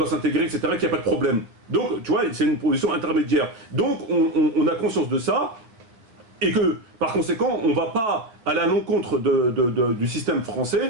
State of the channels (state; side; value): late; left; 9.3 ms